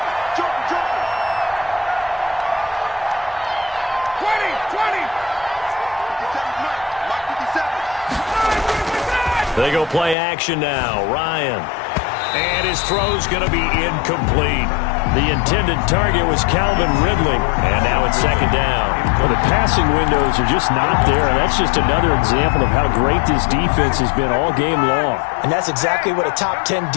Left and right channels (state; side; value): drops out; right; at 10.2 s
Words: They go play action now. Ryan. And his throw's going to be incomplete. The intended target was Calvin Ridley. And now it's second down. Well, the passing windows are just not there, and that's just another example of how great this defense has been all game long. And that's exactly what a top 10